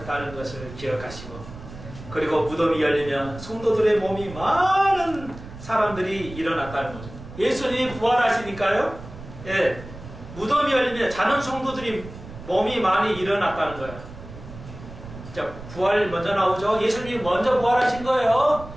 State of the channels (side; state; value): right; noise; rumble, 14 dB below the sound